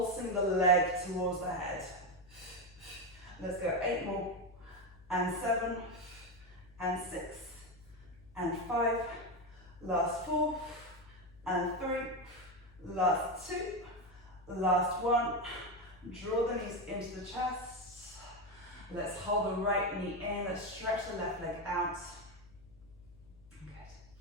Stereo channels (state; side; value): noise; left; hum, 24 dB below the sound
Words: the leg towards the head. Let's go 8 more. And 7. And 6, and 5, last 4, and 3, last 2, last 1. Draw the knees into the chest. Let's hold the right knee in. Let's stretch the left leg out. Good.